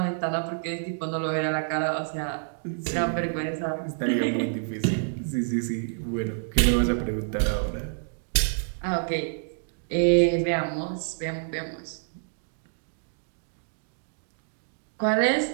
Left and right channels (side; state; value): left; silent; digital silence